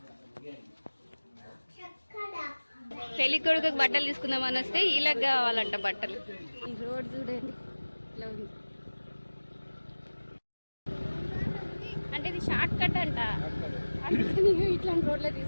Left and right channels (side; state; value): both; inverted; correlation -1.00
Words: పెళ్లి కొడుకు బట్టలు తీసుకుందామని వస్తే ఇలా కావాలంట బట్టలు. ఈ రోడ్ చూడండి ఇలా ఉంది. అంటే ఇది షార్ట్ కట్ అంట. ఇట్లాంటి రోడ్లో